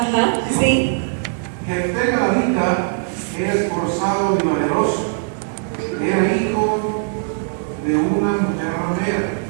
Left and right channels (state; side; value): silent; left; digital silence